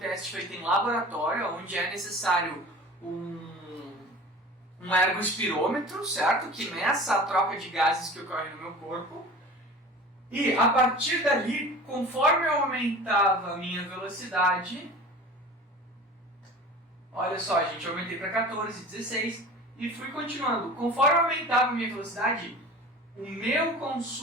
feito em laboratório, onde é necessário um ergospirômetro, certo? Que meça a troca de gases que ocorre no meu corpo. E a partir dali, conforme eu aumentava a minha velocidade, olha só, gente, eu aumentei para 14, 16 e fui continuando. Conforme eu aumentava a minha velocidade, o meu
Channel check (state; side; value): normal; both; correlation 0.39